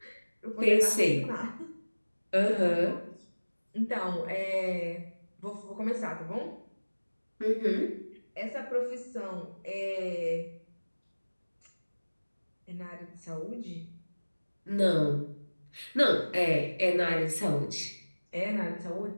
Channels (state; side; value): inverted; both; correlation -1.00